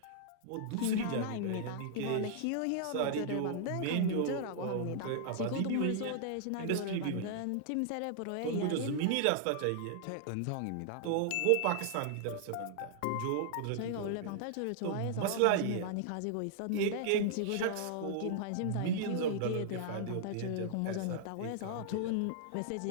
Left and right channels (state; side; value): different; both; correlation -0.01